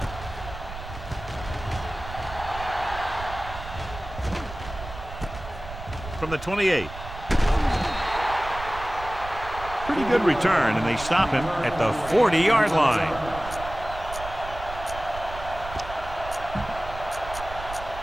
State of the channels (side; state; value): right; noise; rumble, 12 dB below the sound